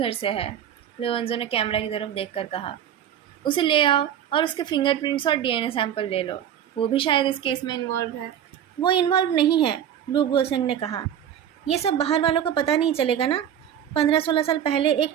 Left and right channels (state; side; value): quieter; left; 9.8 dB